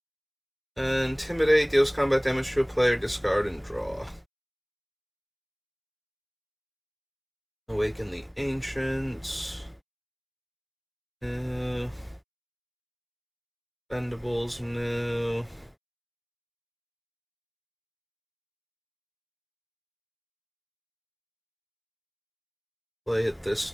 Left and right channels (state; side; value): identical; both; correlation 1.00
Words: Intimidate deals combat damage to a player, discard, and draw. Awaken the Ancients. No. Bendables, no. Play it this